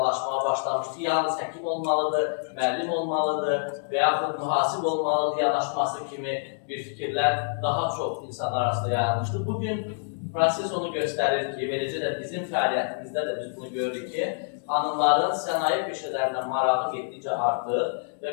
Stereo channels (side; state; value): right; silent; digital silence